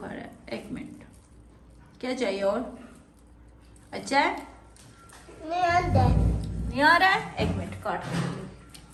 रहा है। 1 मिनट, क्या चाहिए और? अच्छा है नहीं आ रहा है? 1 मिनट काट।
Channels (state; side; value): identical; both; correlation 1.00